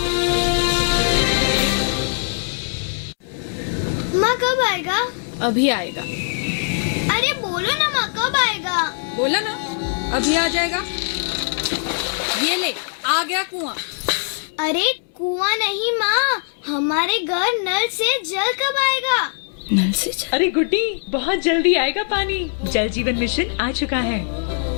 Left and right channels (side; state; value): right; silent; digital silence